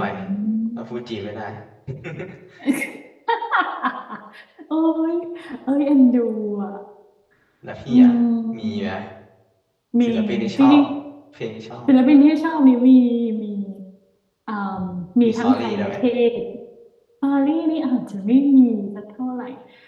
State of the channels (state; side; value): identical; both; correlation 1.00